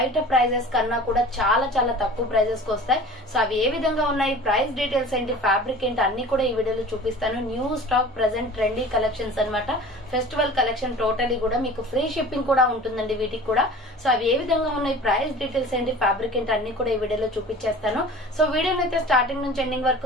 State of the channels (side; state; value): both; normal; correlation 0.41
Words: ప్రైజెస్ కన్నా కూడా చాలా చాలా తక్కువ ప్రైజెస్ కి వస్తాయి. సో అవి ఏ విధంగా ఉన్నాయి, ప్రైస్ డీటెయిల్స్ ఏంటి, ఫ్యాబ్రిక్ ఏంటి అన్ని కూడా ఈ వీడియోలో చూపిస్తాను. New stock present trendy collections అనమాట. ఫెస్టివల్ కలెక్షన్ టోటలీ కూడా మీకు ఫ్రీ షిప్పింగ్ కూడా ఉంటుందండి వీటికి కూడా. సో అవి ఏ విధంగా ఉన్నాయి, ప్రైస్ డీటెయిల్స్ ఏంటి, ఫ్యాబ్రిక్ ఏంటి అన్ని కూడా ఈ వీడియోలో చూపించేస్తాను. సో వీడియోని అయితే స్టార్టింగ్ నుంచి ఎండింగ్ వరకు